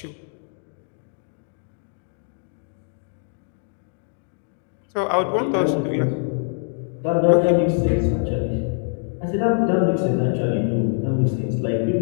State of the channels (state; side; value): silent; right; digital silence